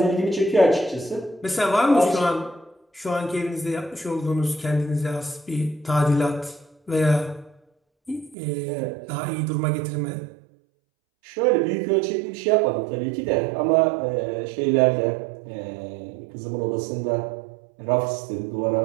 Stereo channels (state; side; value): drops out; left; at 8.3 s